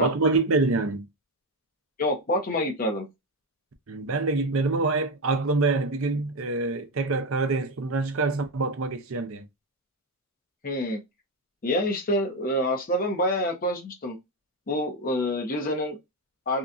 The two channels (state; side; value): normal; both; correlation 0.10